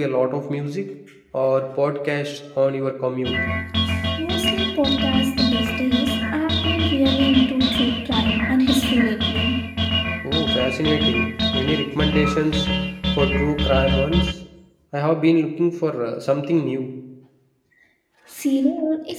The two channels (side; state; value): both; identical; correlation 1.00